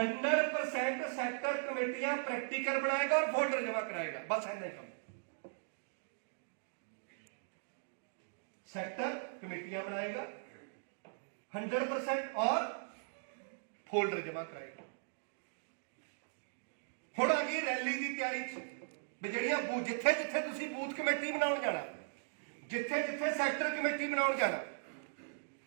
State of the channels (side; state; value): left; silent; digital silence